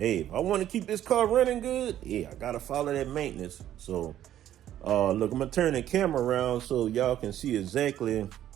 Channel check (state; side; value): quieter; left; 11.7 dB